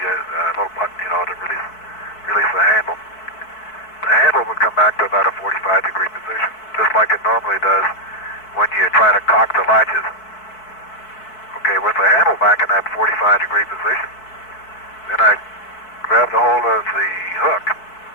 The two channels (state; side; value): late; right; 4.6 ms